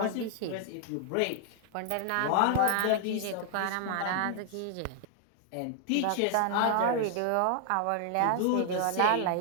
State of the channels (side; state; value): both; different; correlation 0.00